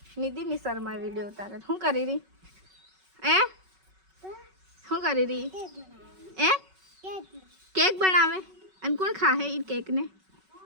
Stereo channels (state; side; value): late; left; 5.3 ms